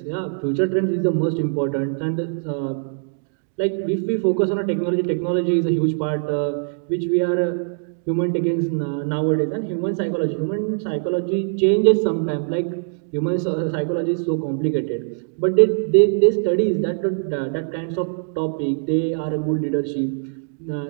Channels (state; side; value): silent; left; digital silence